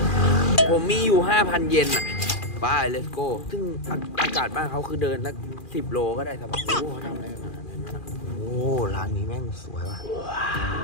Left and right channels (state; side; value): late; right; 2.4 ms